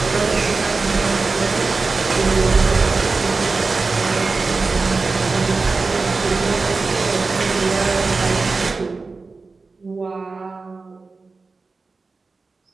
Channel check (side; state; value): left; quieter; 4.0 dB